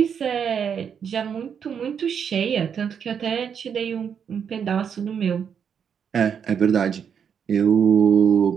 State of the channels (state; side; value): quieter; left; 7.5 dB